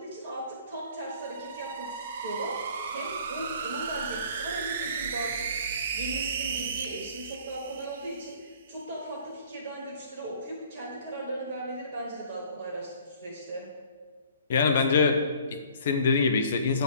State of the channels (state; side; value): inverted; both; correlation -0.53